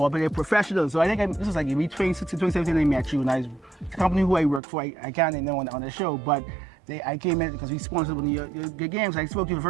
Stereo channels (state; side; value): drops out; left; at 4.6 s